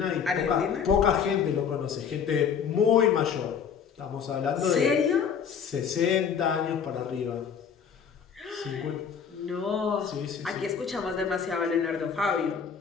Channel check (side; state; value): right; quieter; 7.1 dB